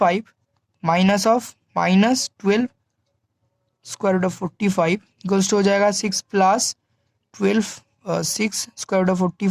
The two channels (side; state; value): both; identical; correlation 1.00